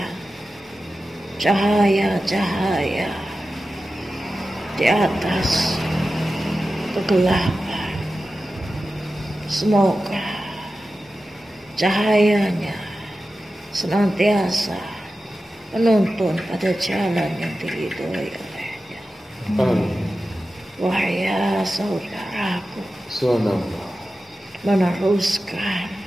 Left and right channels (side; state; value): both; normal; correlation 0.93